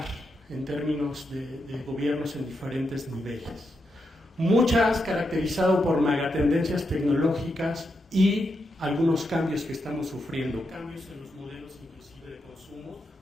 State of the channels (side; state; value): both; normal; correlation 0.84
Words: en términos de gobiernos en diferentes niveles. Muchas caracterizado por megatendencias tecnológicas y algunos cambios que estamos sufriendo, cambios en los modelos inclusive de consumo,